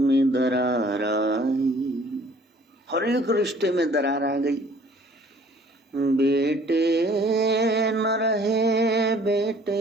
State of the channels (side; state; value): both; normal; correlation 0.55